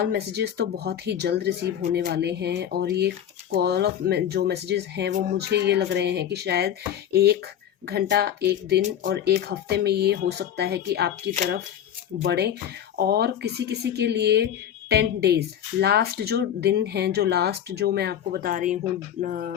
मैसेजेस तो बहुत ही जल्द रिसीव होने वाले हैं, और ये कॉल ऑफ जो मैसेजेस हैं वो मुझे ये लग रहे हैं कि शायद 1 घंटा, 1 दिन और 1 हफ्ते में ये हो सकता है कि आपकी तरफ बढ़े। और किसी किसी के लिए 10 डेज, लास्ट जो दिन हैं, जो लास्ट जो मैं आपको बता रही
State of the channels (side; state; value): right; quieter; 10.0 dB